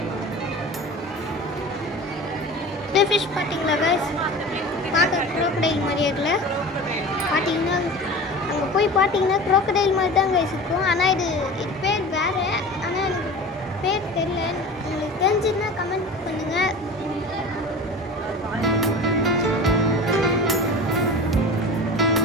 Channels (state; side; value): normal; both; correlation 0.35